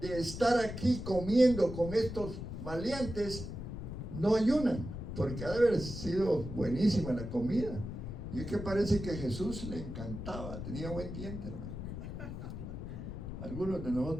estar aquí comiendo con estos maleantes no ayunan? Porque ha de haber sido buenísima la comida. Y es que parece que a Jesús le encantaba, tenía buen diente, hermano. Algunos de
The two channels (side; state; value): left; noise; rumble, 7 dB below the sound